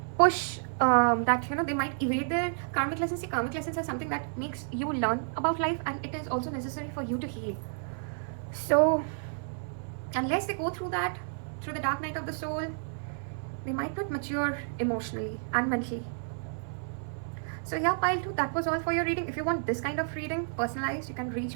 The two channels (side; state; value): left; silent; 56 dB below the other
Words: push they might evade their karmic lessons. See, karmic lessons are something that makes you learn about life, and it is also necessary for you to heal. So unless they go through that, through the dark night of the soul, they might not mature emotionally and mentally. So yeah, pile 2, that was all for your reading. If you want this kind of reading, personalized, you can reach